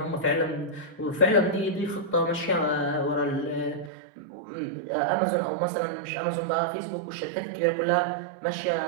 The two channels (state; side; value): drops out; left; at 3.9 s